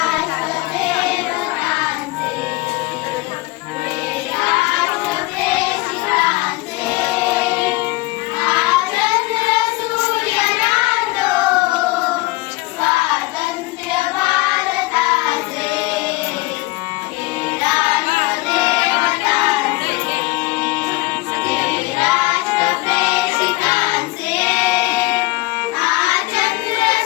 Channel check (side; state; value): right; quieter; 21.6 dB